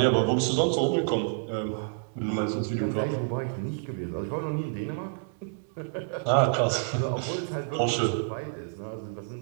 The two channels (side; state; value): left; silent; 59 dB below the other